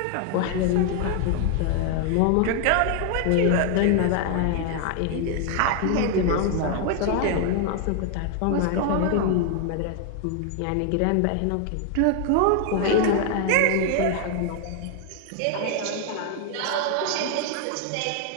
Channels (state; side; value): different; both; correlation 0.00